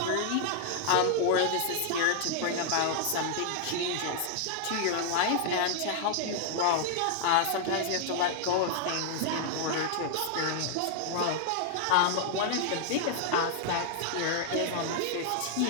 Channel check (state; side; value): different; both; correlation 0.00